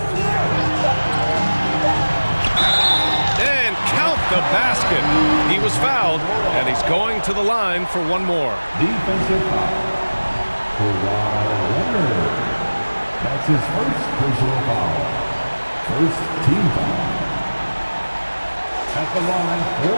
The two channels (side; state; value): both; inverted; correlation -1.00